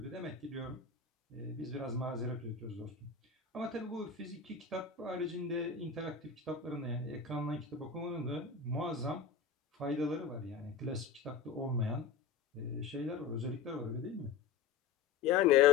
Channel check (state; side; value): quieter; right; 6.1 dB